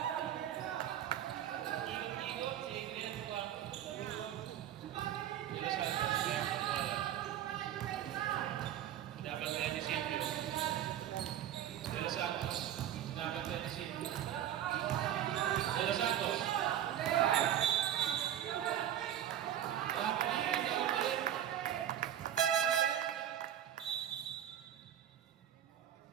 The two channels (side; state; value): left; quieter; 11.0 dB